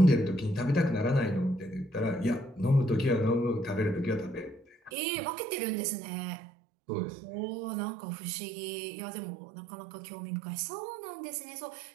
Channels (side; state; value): left; drops out; at 4.9 s